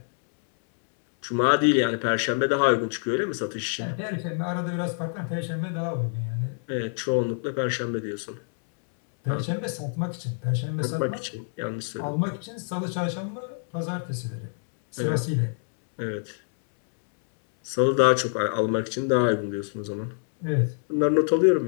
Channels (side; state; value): right; silent; 61 dB below the other